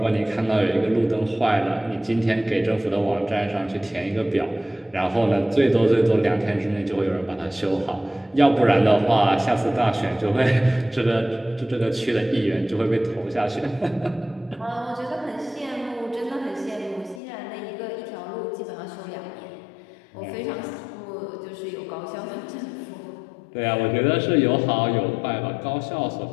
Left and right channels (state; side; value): drops out; right; at 17.2 s